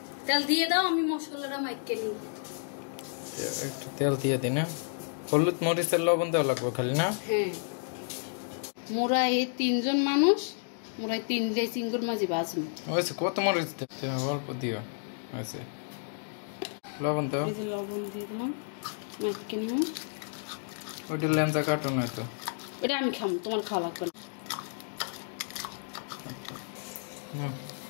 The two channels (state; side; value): silent; right; digital silence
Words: তেল দিয়ে দাও, আমি মশলাটা মাইকে নিই। একটু তেল দিয়ে দিই না। হলুদ মরিচের লবণ দেওয়া লাগবে খালি না? হ্যাঁ, মোরা এই 3 জন মানুষ, মোরা 3 চিংড়ি মাছ ভাজবো। ওইসে কত মরিচ দিতে অল্প দিও। ওইসে লবণ দাও। এই যে লবণ দিয়ে দিলাম, মাইকে নিলাম। ওইটা লেঞ্জা কাটো না তো, এটা আমি খাম, তোমার খাওয়া লাগবে না।